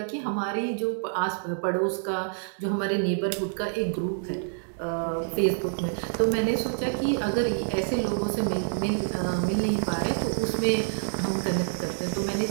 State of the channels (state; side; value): silent; left; digital silence